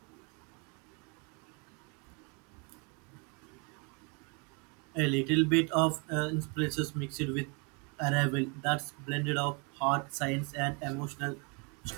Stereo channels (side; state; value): left; quieter; 33.4 dB